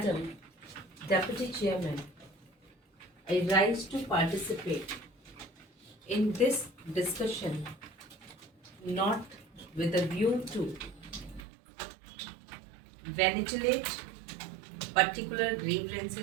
Deputy Chairman, I rise to participate in this discussion not with a view to ventilate particular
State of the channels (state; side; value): drops out; left; at 11.5 s